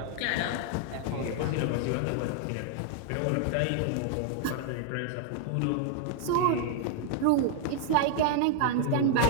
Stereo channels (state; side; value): different; both; correlation 0.00